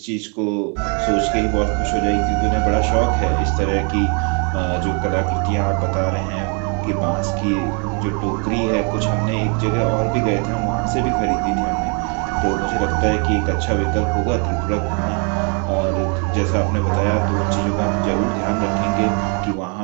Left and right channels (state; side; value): quieter; left; 37.6 dB